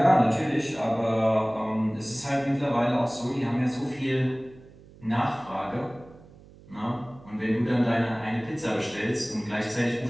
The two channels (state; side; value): noise; right; hum, 23 dB below the sound